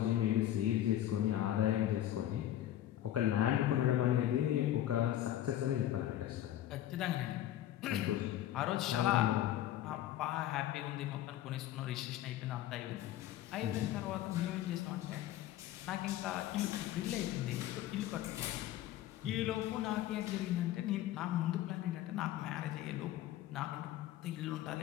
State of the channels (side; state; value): right; quieter; 12.7 dB